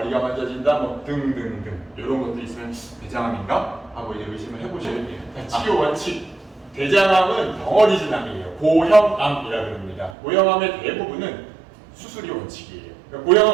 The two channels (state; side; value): drops out; left; at 10.2 s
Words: 만져진다, 뭐 등등등 이런 것도 있으면 대장암인가 하고 이제 의심을 해보셔야 돼요. 치료 원칙 대장암은 덩어리 진암이에요. 고형암이라 그럽니다. 고형암의 대부분은 수술이 원칙이에요. 그러니까